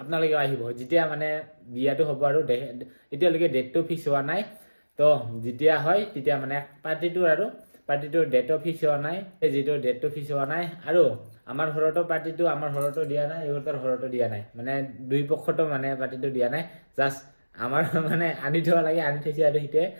আহিব যেতিয়া মানে বিয়াটো হ'ব আৰু এতিয়ালৈকে ডেটটো ফিক্স হোৱা নাই তো যেতিয়া হয় তেতিয়া মানে পাৰ্টিটোৰ ডেটো ফিক্স হোৱা নাই যিটো ডেটটো ফিক্স হোৱা নাই আৰু আমাৰ ঘৰতো পাৰ্টিটো আমাৰ ঘৰতো দিয়া নাই ইহঁতৰ ঘৰতো দিয়া নাই মানে দুই পক্ষতো মানে পাৰ্টিটো দিয়া নাই জাষ্ট আমাৰ মানে আনি থোৱা লাগে আনি থৈছে আৰু সেইটোৱে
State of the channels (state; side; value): inverted; both; correlation -1.00